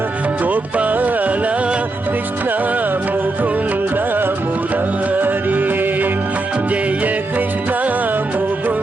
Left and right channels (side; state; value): left; quieter; 3.0 dB